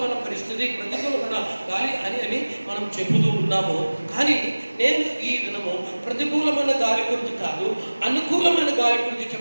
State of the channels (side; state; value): both; inverted; correlation -1.00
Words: పరిస్థితి, ప్రతికూలమైన గాలి అని మనం చెబుతూ ఉన్నాము. కానీ నేను ఈ దినము ప్రతికూలమైన గాలి గురించి కాదు, అనుకూలమైన గాలి గురించి